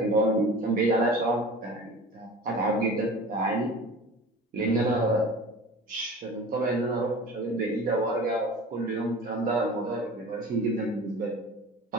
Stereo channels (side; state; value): both; normal; correlation 0.38